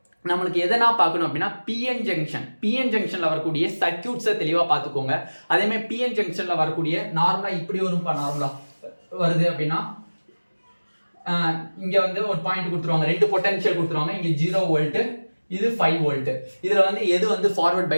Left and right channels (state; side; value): inverted; both; correlation -1.00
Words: நம்மளுக்கு எதனா பார்க்கணும் அப்படின்னா பிஎன் ஜங்ஷன்ல வரக்கூடிய சர்க்யூட்ஸை தெளிவா பார்த்துக்கோங்க. அதே மாதிரி பிஎன் ஜங்ஷன்ல வரக்கூடிய நார்மலா இப்படி ஒரு நார்மலா வருது அப்படின்னா இங்க வந்து ஒரு பாயிண்ட் கொடுத்துருவாங்க, 2 பொட்டன்ஷியல் கொடுத்துருவாங்க. இங்க 0 வோல்ட், இது 5 வோல்ட். இதுல வந்து எது வந்து ஃபார்வர்ட்